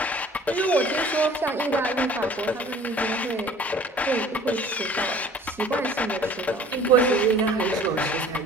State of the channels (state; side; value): normal; both; correlation 0.49